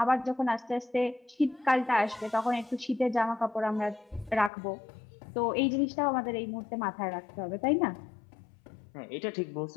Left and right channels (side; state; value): right; drops out; at 4.5 s